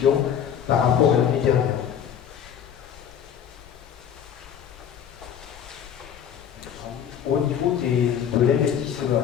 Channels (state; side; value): quieter; right; 8.7 dB